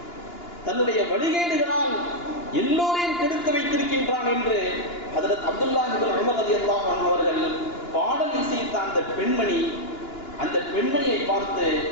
தன்னுடைய வழிகேடுகளால் எல்லோரையும் கெடுத்து வைத்திருக்கின்றான் என்று ஹஜ்ரத் அப்துல்லாஹ் இப்னு உமர் ரலியல்லாஹு அன்ஹு அவர்கள் பாடல் இசைத்த அந்த பெண்மணியை பார்த்து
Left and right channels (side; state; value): right; late; 2.9 ms